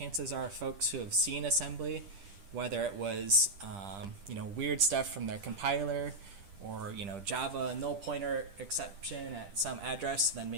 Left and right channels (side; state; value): left; late; 10 ms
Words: are folks who have seen assembly, whether it was weird stuff from their compiler or Java null pointer exception at some address, then